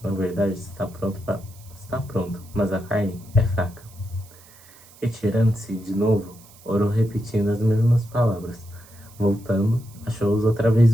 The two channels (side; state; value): right; noise; hiss, 24 dB below the sound